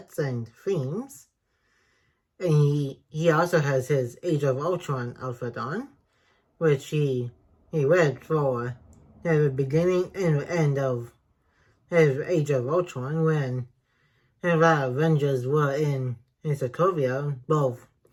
and themes. And he also has his Age of Ultron outfit on, which he read for at the beginning and the end of his Age of Ultron when the Avengers were in Sokovia, both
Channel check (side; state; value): both; identical; correlation 1.00